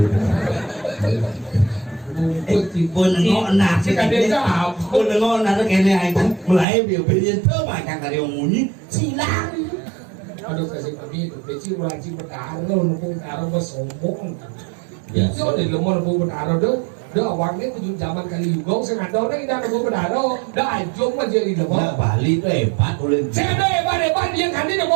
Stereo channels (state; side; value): drops out; left; at 6.7 s